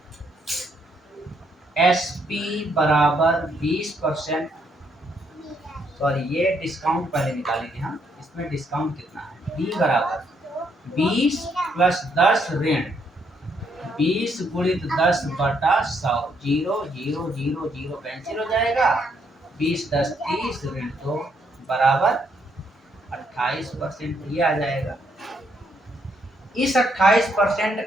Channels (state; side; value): normal; both; correlation 0.73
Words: SP बराबर 20%, सॉरी ये डिस्काउंट पहले निकालेंगे हम, इसमें डिस्काउंट कितना है, B बराबर 20 + 10 ऋण 20 गुणित 10/100, 0 0 0 0 कैंसिल हो जाएगा, 20 10 30 ऋण 2 बराबर 28%, ये आ जाएगा। इस 28%